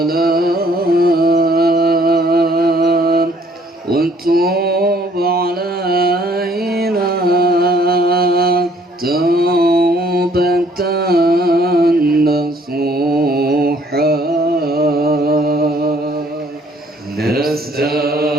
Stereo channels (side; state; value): both; normal; correlation 0.62